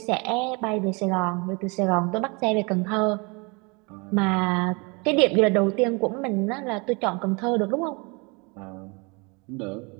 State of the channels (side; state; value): left; quieter; 29.6 dB